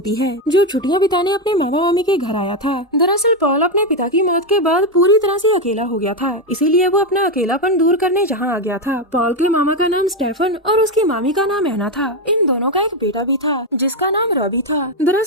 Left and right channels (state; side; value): normal; both; correlation 0.07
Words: है जो छुट्टियां बिताने अपने मामा मामी के घर आया था। दरअसल पॉल अपने पिता की मौत के बाद पूरी तरह से अकेला हो गया था, इसीलिए वो अपना अकेलापन दूर करने जहाँ आ गया था। पॉल के मामा का नाम स्टेफन और उसकी मामी का नाम एना था। इन दोनों का एक बेटा भी था जिसका नाम रॉबी था।